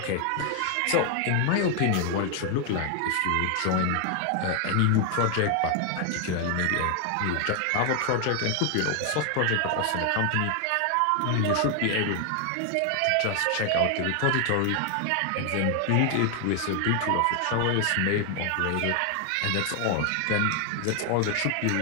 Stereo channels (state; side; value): different; both; correlation 0.00